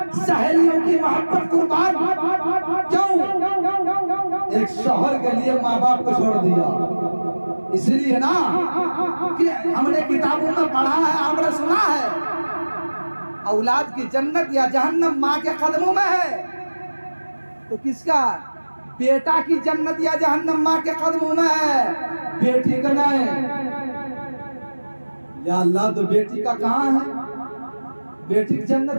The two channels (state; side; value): inverted; both; correlation -1.00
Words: सहेलियों की मोहब्बत कुर्बान। क्यों? एक शौहर के लिए माँ बाप को छोड़ दिया। इसलिए ना कि हमने किताबों में पढ़ा है, हमने सुना है, औलाद की जन्नत या जहन्नम माँ के कदमों में है। तो किसका? बेटा की जन्नत या जहन्नम माँ के कदमों में है, बेटी का नहीं। या अल्लाह, तो बेटी का कहाँ है? बेटी की